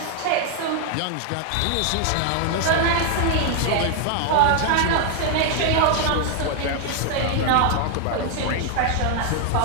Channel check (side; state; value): both; different; correlation 0.00